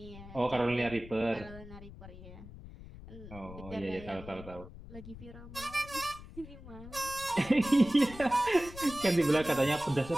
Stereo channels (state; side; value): noise; left; rumble, 15 dB below the sound